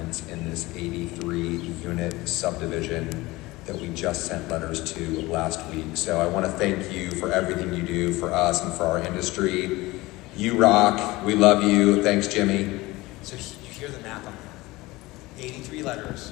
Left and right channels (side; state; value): right; quieter; 20.4 dB